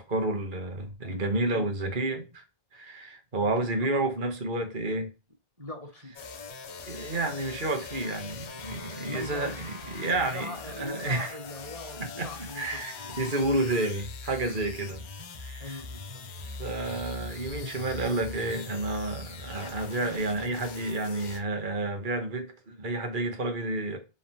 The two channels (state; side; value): late; left; 1.3 ms